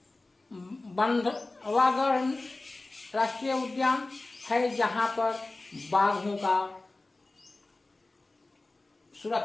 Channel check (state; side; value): quieter; right; 3.1 dB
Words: बंधवागढ़ राष्ट्रीय उद्यान है, जहां पर बाघों का